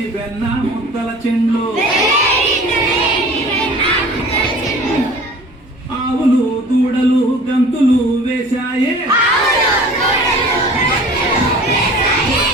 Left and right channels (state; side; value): normal; both; correlation 0.44